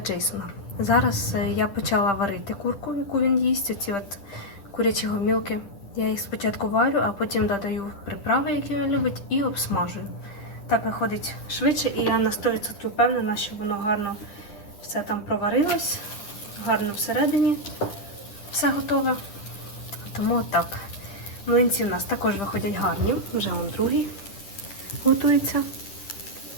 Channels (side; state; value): right; late; 10 ms